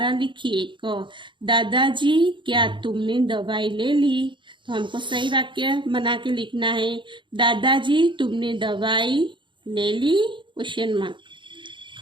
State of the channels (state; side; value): late; left; 0.23 ms